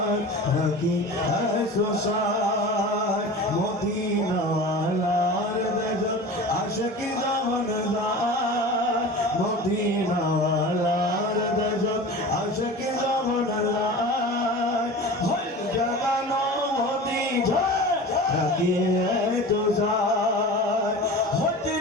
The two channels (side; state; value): both; normal; correlation 0.35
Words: রাখি তো সাই মদিনাওয়ালার দেশ আশিক যখন যায় মদিনাওয়ালার দেশ আশিক যখন যায় ভুল জাগানো মদিনা রাখি তো সাই হতে